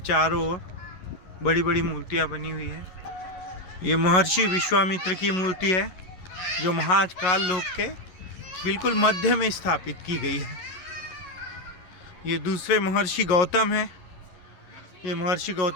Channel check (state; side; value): late; right; 11 ms